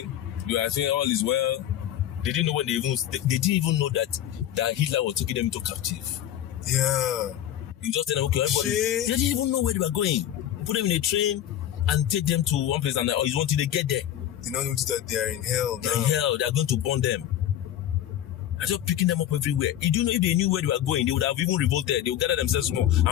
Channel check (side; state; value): right; quieter; 11.7 dB